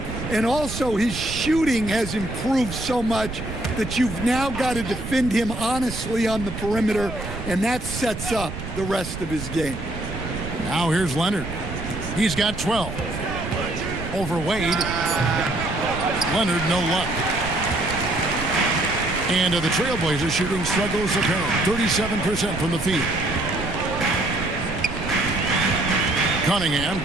And also, his shooting has improved so much that you've now got to defend him honestly on the perimeter, and that sets up the rest of his game. Now here's Leonard. He's got 12. Over Wade. Leonard, no luck. And the Trailblazers shooting struggles apparent. 37% from the field. Cunningham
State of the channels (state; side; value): noise; right; rumble, 8 dB below the sound